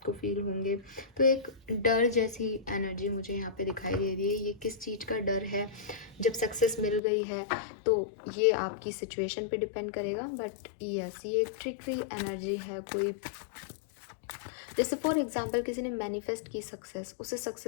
फील होंगे। तो एक डर जैसी एनर्जी मुझे यहाँ पे दिखाई दे रही है। ये किस चीज़ का डर है? जब सक्सेस मिल गई है तो ये आपकी सिचुएशन पे डिपेंड करेगा, बट यस ये एक ट्रिकी एनर्जी है। कोई जैसे फॉर एग्जाम्पल किसी ने मैनिफेस्ट की सक्सेस, उसे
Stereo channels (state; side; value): drops out; right; at 7.0 s